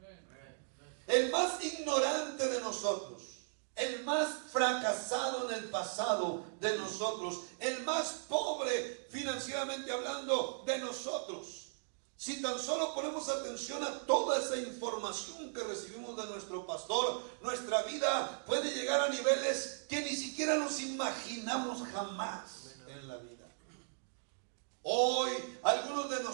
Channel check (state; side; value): silent; left; digital silence